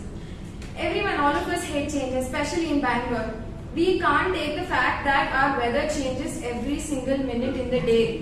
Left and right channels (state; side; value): identical; both; correlation 1.00